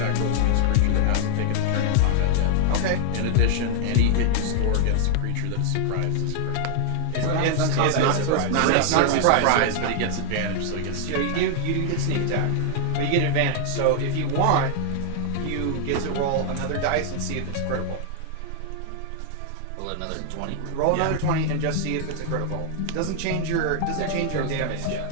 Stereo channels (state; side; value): different; both; correlation 0.00